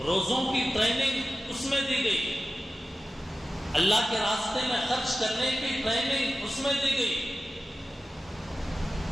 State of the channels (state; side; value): normal; both; correlation 0.94